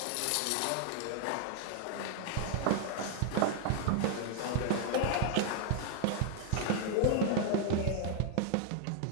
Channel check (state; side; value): different; both; correlation 0.00